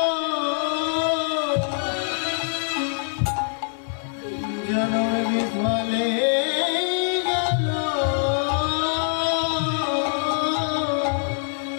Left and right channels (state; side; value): silent; right; digital silence